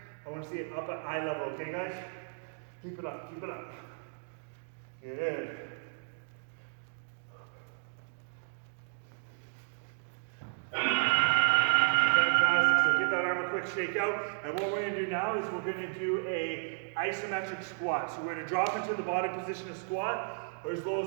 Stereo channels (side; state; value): left; silent; digital silence